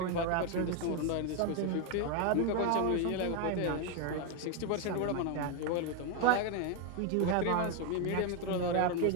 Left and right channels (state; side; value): different; both; correlation 0.01